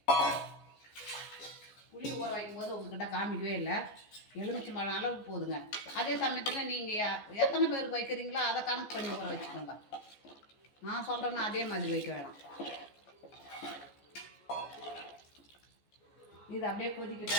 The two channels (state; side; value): late; right; 14 ms